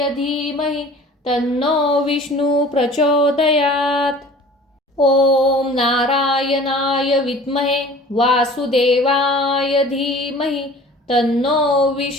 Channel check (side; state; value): both; normal; correlation 0.45